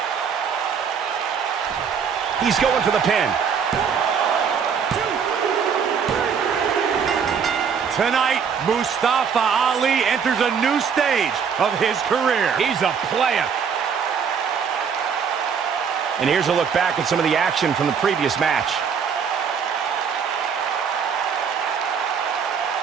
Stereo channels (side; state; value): left; quieter; 6.8 dB